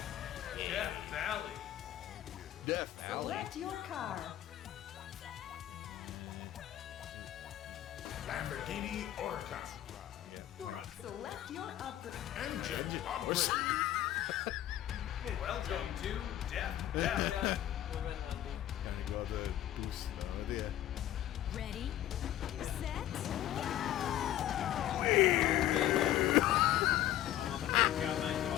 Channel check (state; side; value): quieter; right; 12.8 dB